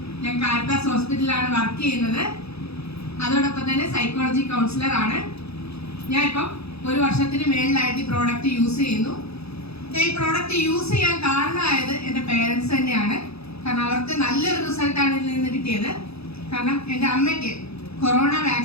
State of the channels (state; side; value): late; right; 0.78 ms